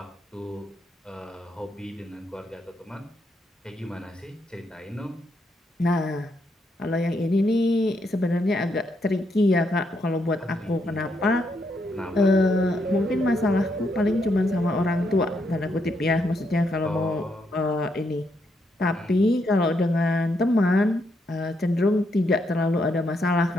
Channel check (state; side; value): normal; both; correlation 0.78